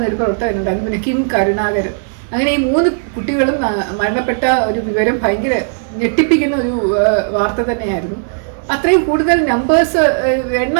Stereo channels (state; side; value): silent; left; digital silence